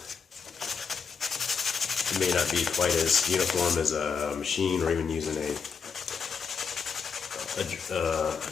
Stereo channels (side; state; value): right; quieter; 5.9 dB